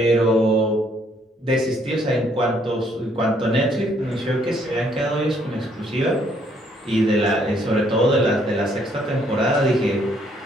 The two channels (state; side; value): normal; both; correlation 0.68